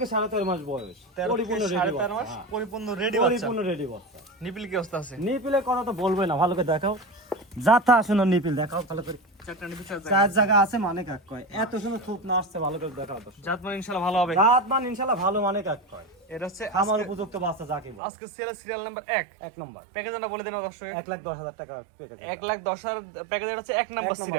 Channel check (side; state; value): left; drops out; at 18.0 s